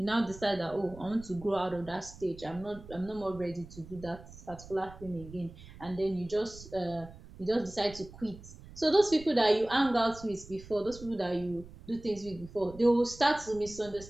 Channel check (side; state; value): right; noise; rumble, 17 dB below the sound